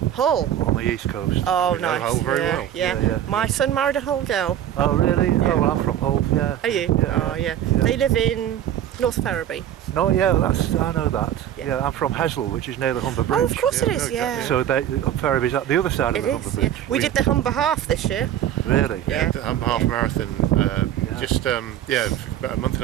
Hull? On the east coast. Oh, nice. Hull very well. Yeah. My son married a Hull girl. Oh, really? Yeah. Oh, well, I'm from Hull, yeah. Are you? Oh, yeah. They live in North Ferriby. No, yeah, I know that. Yeah, I'm from Hesel, which is near the Humber Bridge. Oh, of course it is, yeah. So Ferriby's at the other side of the Humber Bridge. We did the Humber Half this year. Really? Yeah, the Humber Half Marathon just about a month and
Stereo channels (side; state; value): left; quieter; 10.9 dB